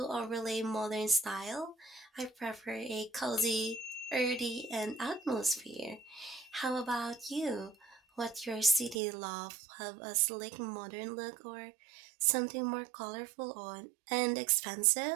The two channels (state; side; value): drops out; left; at 9.0 s